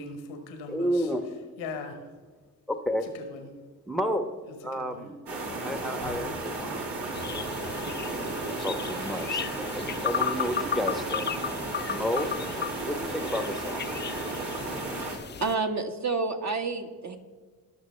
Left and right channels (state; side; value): normal; both; correlation 0.29